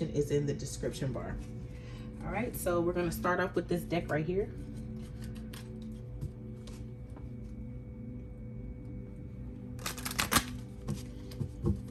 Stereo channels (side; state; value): both; identical; correlation 1.00